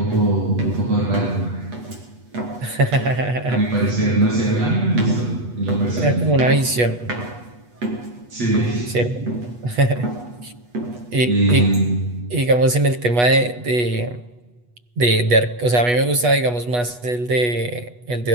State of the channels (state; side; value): late; left; 8.2 ms